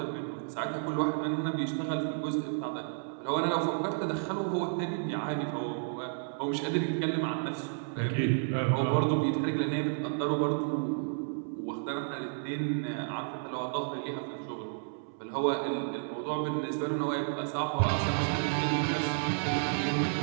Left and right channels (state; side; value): silent; left; 57 dB below the other